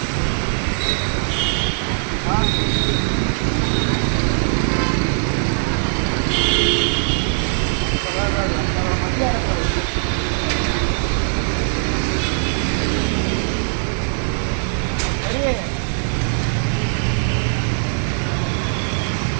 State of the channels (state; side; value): silent; left; 56 dB below the other